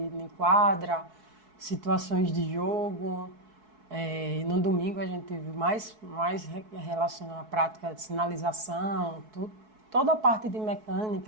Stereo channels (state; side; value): late; left; 4.6 ms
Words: quadra, situações de jogo. No domingo a gente teve mais relacionado à prática de sinalização, toda a parte de